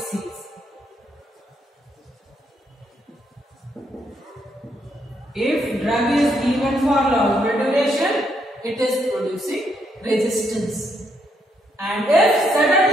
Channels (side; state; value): both; normal; correlation 0.75